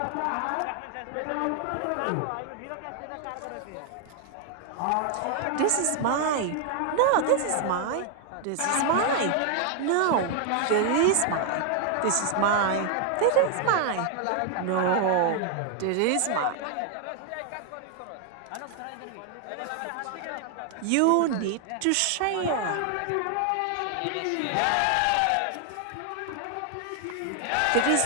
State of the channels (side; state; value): both; different; correlation 0.00